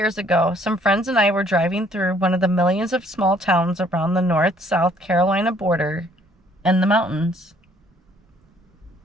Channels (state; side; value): normal; both; correlation 0.62